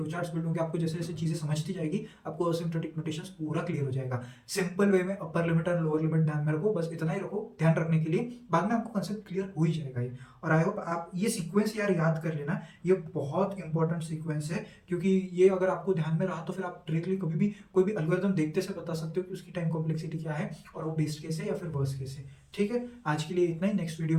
चार्ट्स बिल्ड होंगे, आपको जैसे जैसे चीजें समझती जाएगी आपको असिम्प्टोटिक नोटेशंस पूरा क्लियर हो जाएगा। सिंपल वे में अपर लिमिट और लोअर लिमिट ध्यान में रखो, बस इतना ही रखो ध्यान रखने के लिए, बाद में आपको कंसेप्ट क्लियर हो ही जाएगा ये। और आई होप आप ये सीक्वेंस यार याद कर लेना, ये बहुत इंपॉर्टेंट सीक्वेंस है, क्योंकि ये अगर आपको ध्यान में रहा तो फिर आप डायरेक्टली कभी भी कोई भी एल्गोरिथम देखते से बता सकते हो कि उसकी टाइम कॉम्प्लेक्सिटी कॉम्प्लेक्सिटी क्या है और वो बेस्ट केस है या फिर वर्स्ट केस है। ठीक है, आज के लिए इतना ही। नेक्स्ट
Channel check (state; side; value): identical; both; correlation 1.00